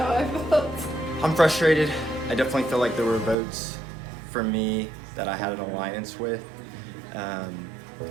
I felt. I'm frustrated. I definitely feel like there were votes for me that I had an alliance with.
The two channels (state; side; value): drops out; left; at 3.4 s